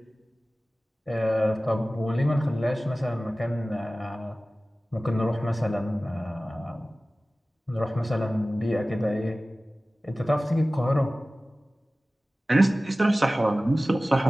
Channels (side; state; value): both; normal; correlation 0.97